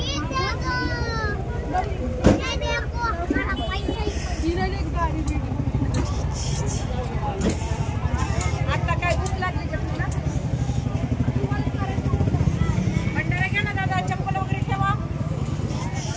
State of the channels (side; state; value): both; identical; correlation 1.00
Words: आता काय भूक लागली का तुला? भंडारा घ्या ना दादा, चप्पल वगैरे ठेवा.